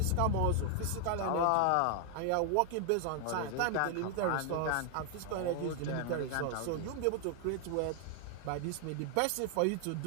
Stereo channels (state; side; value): different; both; correlation 0.00